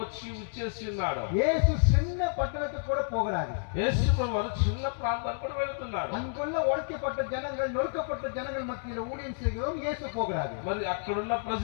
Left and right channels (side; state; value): right; silent; digital silence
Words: వచ్చి ఇచ్చేసి ఉన్నాడు. இயேசு சின்ன పట్టణத்துக்கு கூட போகிறாரு. యేసువారు చిన్న ప్రాంతానికి కూడా వెళ్తున్నారు. அங்குள்ள ஒடுக்கப்பட்ட ஜனங்கள், நொறுக்கப்பட்ட ஜனங்கள் மத்தியில ஊழியம் செய்கிறோம், இயேசு போகிறாரு. మరి అక్కడున్న